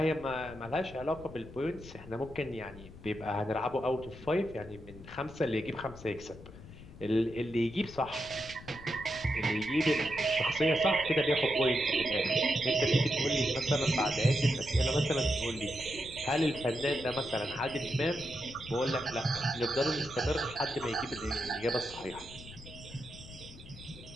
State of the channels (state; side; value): noise; left; rumble, 16 dB below the sound